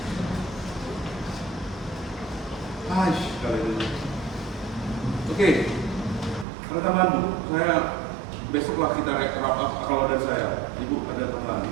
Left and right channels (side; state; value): left; drops out; at 6.5 s